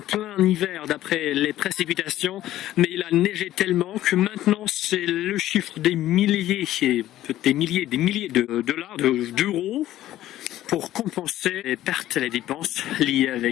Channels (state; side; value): quieter; right; 13.9 dB